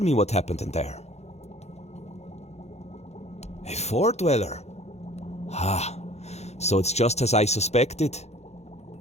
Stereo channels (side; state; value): right; late; 0.31 ms